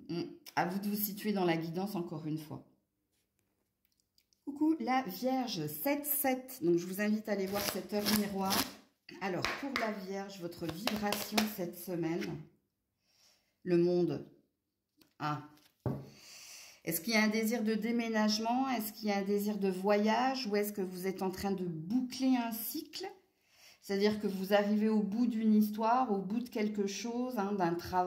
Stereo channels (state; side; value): identical; both; correlation 1.00